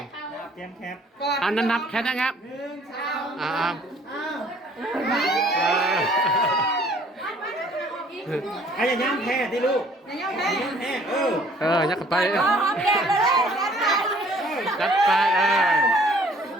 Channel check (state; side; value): normal; both; correlation 0.57